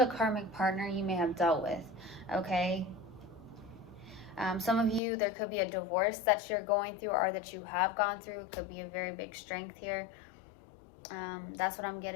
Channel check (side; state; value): right; drops out; at 5.0 s